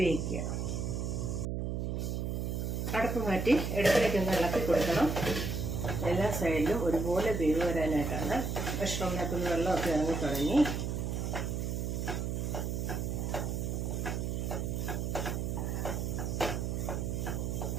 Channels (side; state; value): right; noise; hum, 1 dB below the sound